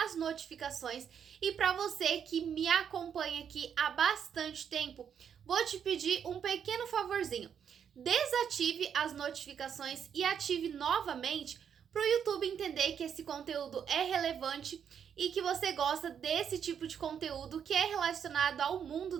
notificações, e para você que me acompanha aqui há bastante tempo, vou te pedir um pequeno favorzinho. Desative as notificações e ative novamente para o YouTube entender que esse conteúdo é relevante e que você gosta desse tipo de conteúdo que é relacionado ao mundo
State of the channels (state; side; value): quieter; left; 8.0 dB